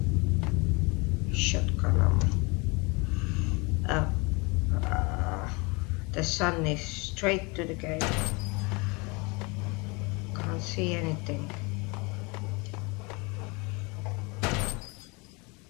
Shotgun ammo. The sun is straight to the gate. Can't see anything.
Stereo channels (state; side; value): quieter; right; 28.1 dB